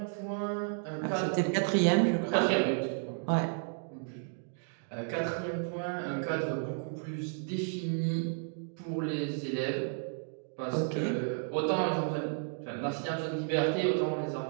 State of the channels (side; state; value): left; silent; 56 dB below the other